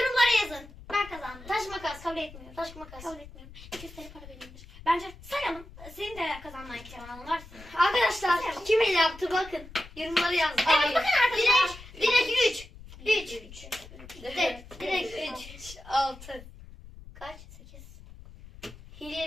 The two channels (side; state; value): left; noise; rumble, 17 dB below the sound